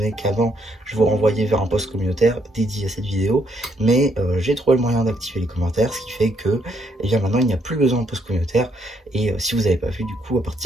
qu'avant, je vous renvoyais vers un post communautaire dédié à cette vidéo, mais j'ai trouvé le moyen d'activer les commentaires, ce qui fait que, eh bien, maintenant, il n'y a plus besoin de post communautaire, et si vous n'avez pas vu, du coup, à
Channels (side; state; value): both; normal; correlation 0.72